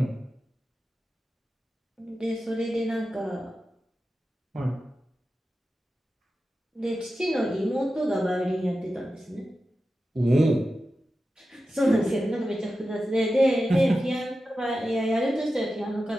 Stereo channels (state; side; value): normal; both; correlation 0.92